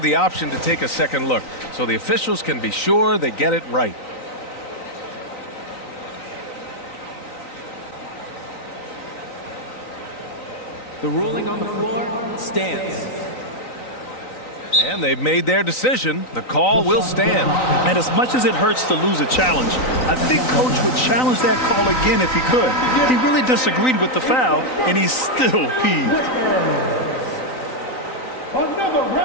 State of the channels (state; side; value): late; right; 3.9 ms